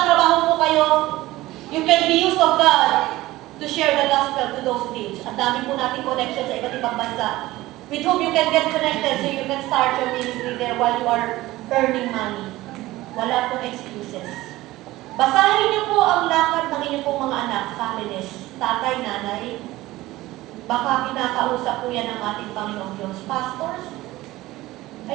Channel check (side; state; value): left; quieter; 17.7 dB